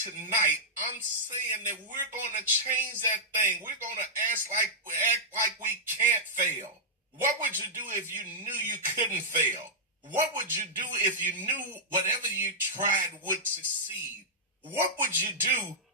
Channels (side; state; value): both; normal; correlation -0.11